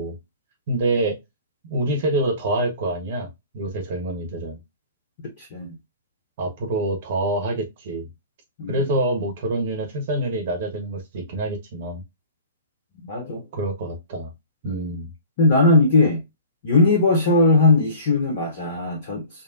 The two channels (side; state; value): both; inverted; correlation -0.43